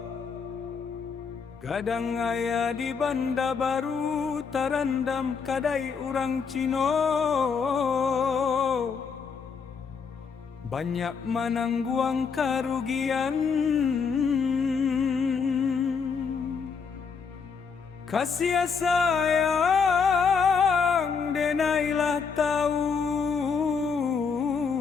kadang aya di Banda Baru tarandam kadai urang Cino, banyak menangguang kerugian. Kasih sayang denailah tahu,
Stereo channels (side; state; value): right; quieter; 5.8 dB